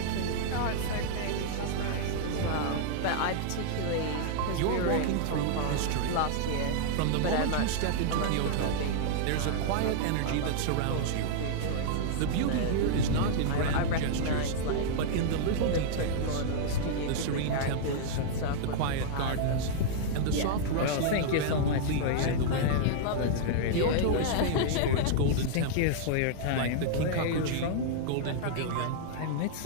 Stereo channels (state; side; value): different; both; correlation -0.01